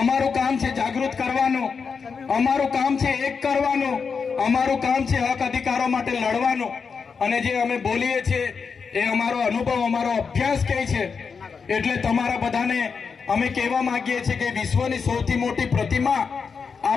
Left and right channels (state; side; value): quieter; right; 5.6 dB